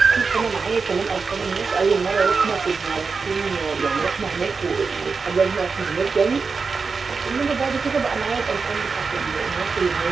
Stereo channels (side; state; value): left; quieter; 4.8 dB